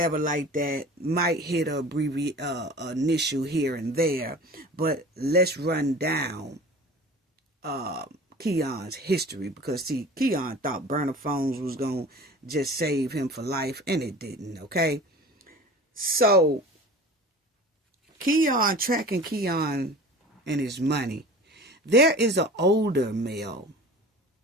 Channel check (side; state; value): both; normal; correlation 0.39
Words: like that. Might hit a initial here and there. But let's run down Keon's history, because see, Keon thought burner phones was going to just save him for life, and it didn't, okay? So tracking Keon and his money, there is an older male